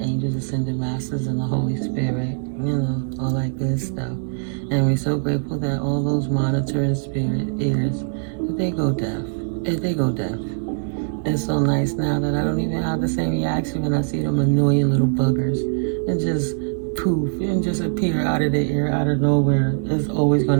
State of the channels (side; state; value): left; silent; 60 dB below the other